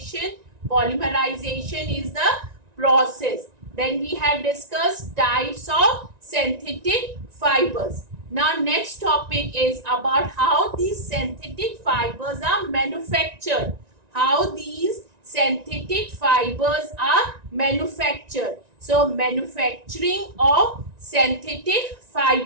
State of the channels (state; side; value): late; left; 1.9 ms